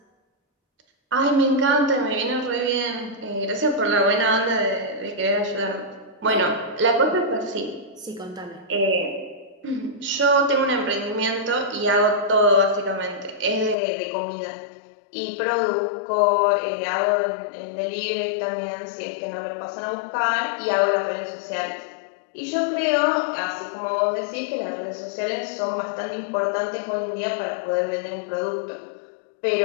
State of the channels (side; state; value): right; drops out; at 13.8 s